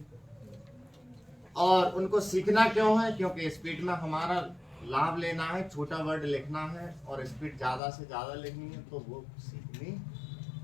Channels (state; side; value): drops out; right; at 7.8 s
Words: और उनको सीखना क्यों है? क्योंकि स्पीड में हमारा लाभ लेना है, छोटा वर्ड लिखना है, और स्पीड ज्यादा से ज्यादा लिखनी है, तो वो सीखनी